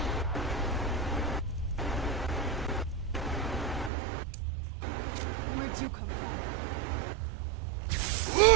Where'd you come from?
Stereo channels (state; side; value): drops out; left; at 3.9 s